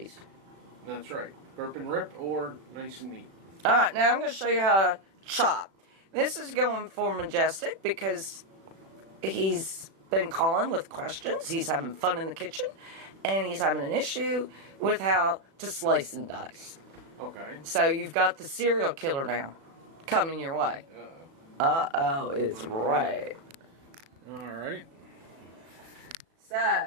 That's right. Burp and rip or nice and neat. Alright, now I'm going to show you how to chop. This is going for Majestic because he's been calling with questions. He's having fun in the kitchen. And he's having an issue with how to slice and dice. Okay. So you've got the serial killer now coming your way. Uh-oh is right. Alright. So,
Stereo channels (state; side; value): late; left; 37 ms